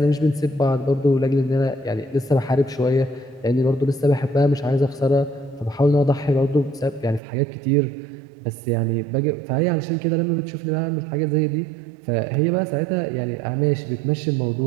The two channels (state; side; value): drops out; left; at 7.2 s